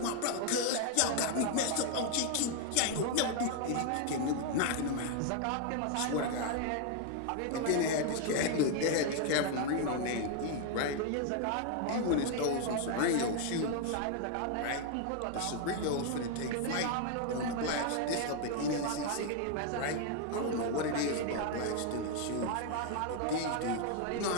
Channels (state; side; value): different; both; correlation 0.00